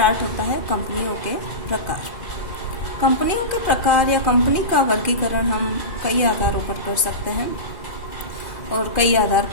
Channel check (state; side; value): late; right; 2.5 ms